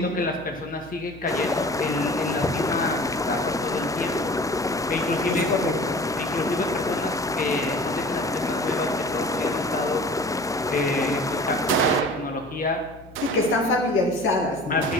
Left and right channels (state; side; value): noise; left; hum, 21 dB below the sound